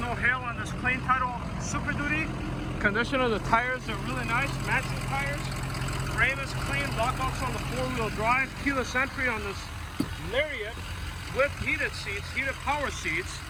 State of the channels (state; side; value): identical; both; correlation 1.00